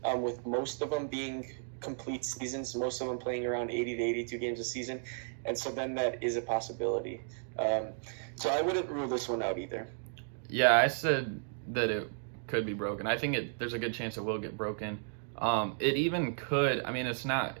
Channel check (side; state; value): left; silent; digital silence